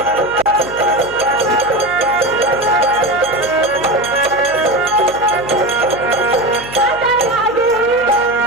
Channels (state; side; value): noise; right; hum, 20 dB below the sound